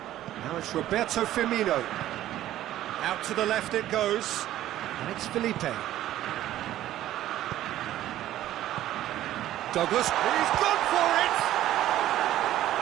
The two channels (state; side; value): quieter; left; 13.4 dB